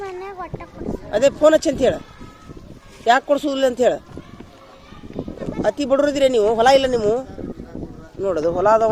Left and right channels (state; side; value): identical; both; correlation 1.00